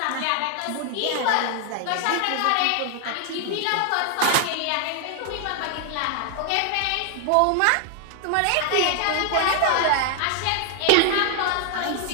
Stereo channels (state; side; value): different; both; correlation 0.00